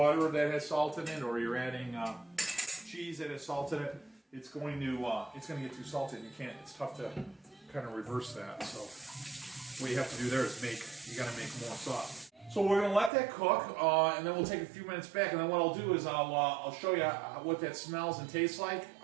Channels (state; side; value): drops out; left; at 13.1 s